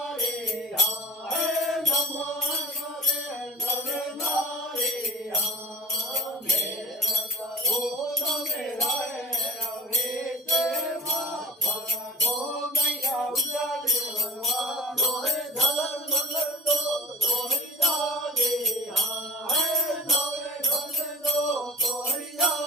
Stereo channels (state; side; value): normal; both; correlation 0.41